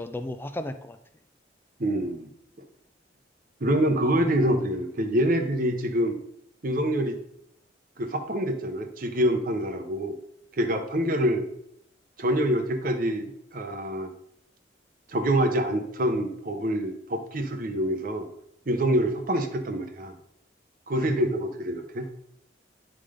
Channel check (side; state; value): both; normal; correlation 0.45